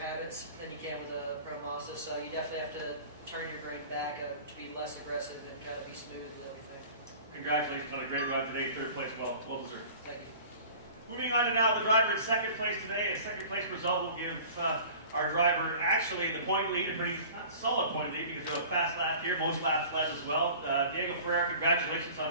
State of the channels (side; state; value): both; inverted; correlation -0.43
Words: than you can with a Pro Mazda, so you definitely have to turn your brain back to be less aggressive and kind of be smooth with everything. Congratulations on a great run today, 3rd place, well deserved. Thank you. Moving on to now the driver in 2nd place today. A 2nd place result will give our driver actually the point lead, a pretty not solid point lead because they have a fast lap here, most laps led as well. Diego Ferreira, congratulations